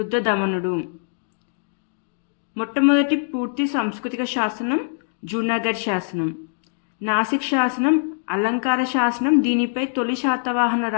మొట్టమొదటి పూర్తి సాంస్కృతిక శాసనం జూనాగఢ్ శాసనం. నాసిక్ శాసనం అలంకార శాసనం. దీనిపై తొలి శాతవాహన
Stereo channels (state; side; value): silent; right; digital silence